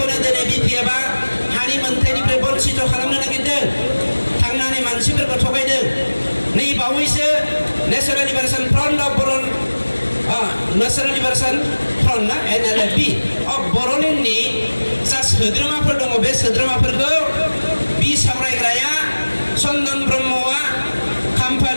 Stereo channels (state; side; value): inverted; both; correlation -1.00